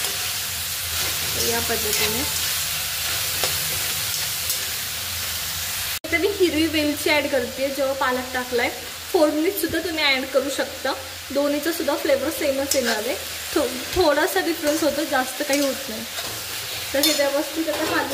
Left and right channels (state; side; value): identical; both; correlation 1.00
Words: या पद्धतीने मी हिरवी वेलची ऍड करते जेव्हा पालक टाकलाय। फोडणीत सुद्धा तुम्ही ऍड करू शकता, दोन्हीचा सुद्धा फ्लेवर सेमच येणार आहे, थोडासा डिफरन्स होतो, जास्त काही होत नाही। तर हे व्यवस्थित आता